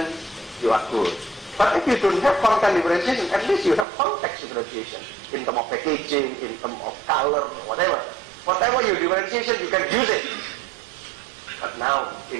you are good. But if you don't have content differentiation, at least you have context differentiation in terms of packaging, in terms of color, whatever. Whatever your differentiation, you can use it. But now,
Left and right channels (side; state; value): left; drops out; at 3.9 s